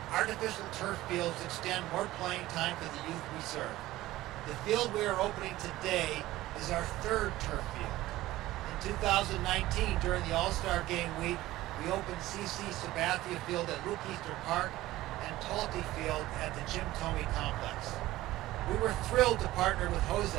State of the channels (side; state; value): left; quieter; 16.5 dB